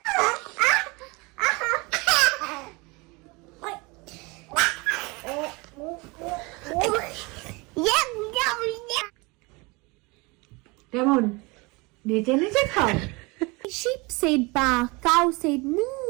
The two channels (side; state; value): left; quieter; 26.3 dB